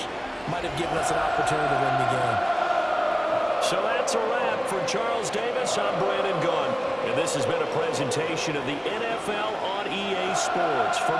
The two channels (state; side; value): identical; both; correlation 1.00